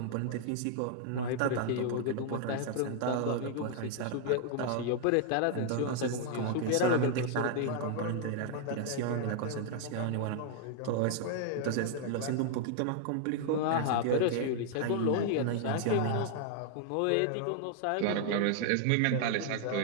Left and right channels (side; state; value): both; different; correlation 0.00